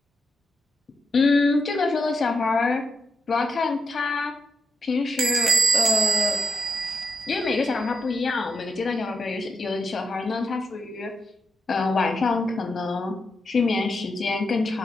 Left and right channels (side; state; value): both; normal; correlation 0.84